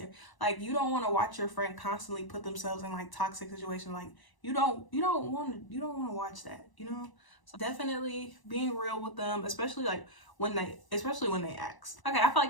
Like, you don't want to watch your friend constantly put themselves in like toxic situations. Like, you don't want to watch that, you know? So definitely being real with them, especially when they ask. Okay, I feel like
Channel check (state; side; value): late; right; 1.0 ms